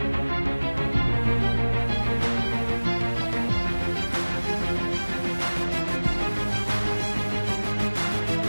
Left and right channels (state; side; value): inverted; both; correlation -1.00